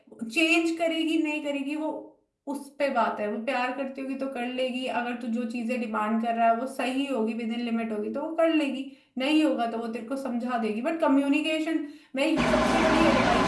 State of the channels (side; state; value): both; identical; correlation 1.00